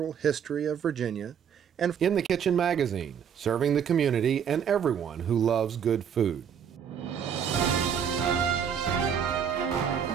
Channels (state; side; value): quieter; left; 7.9 dB